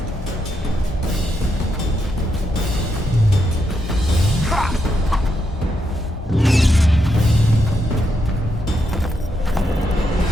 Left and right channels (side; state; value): both; normal; correlation 0.81